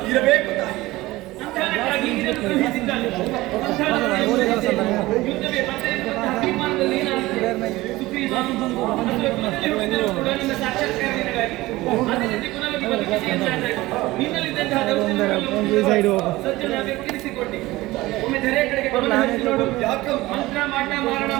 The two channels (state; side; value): quieter; left; 18.8 dB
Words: ಇರಬೇಕು ತಾಯಿ. ಮಂಥಾನಕ್ಕಾಗಿ ಇದನ್ನು ಕಳುಹಿಸಿದ್ದಾನೆ. ಯುದ್ಧವೇ ಮತ್ತೆ ಎನ್ನುವಂತಹ ತೀರ್ಮಾನದಲ್ಲಿ ಏನಾಗುತ್ತದೆ? ಸುಗ್ರೀವ ಅಥವಾ ಕುಲದಲ್ಲಿ ಹುಟ್ಟಿದರೂ ಕೂಡ ನಿನ್ನ ಸಾಕ್ಷಾತ್ಕಾರ ನಿನಗಾಗಿ ಅದೇ ರೀತಿ ಕುಲದಲ್ಲಿ ಬದುಕಿಸಿ ಎಂದಾದಾಗ ನಿನ್ನಲ್ಲಿದ್ದಂತಹ ದೌರ್ಜನ್ಯಗಳನ್ನು ಸಜ್ಜನ ವ್ಯಕ್ತಿರಿಸಿಕೊಂಡಿ ಒಮ್ಮೆ ಧರೆ ಕಡೆಗೆ ಗಮನ ಹರಿಸಿ ನೋಡು. ಮಂತ್ರ ಮಾಟ ಮಾರಣ